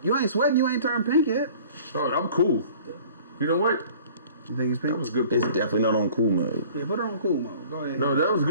you ain't sweating. You ain't turned pink yet. Oh, I'm cool. You know what? You think it's pink? That was a good It's point. definitely not on cool mode. Yeah, put it on cool mode. Go ahead. No, that was a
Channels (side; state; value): both; inverted; correlation -0.49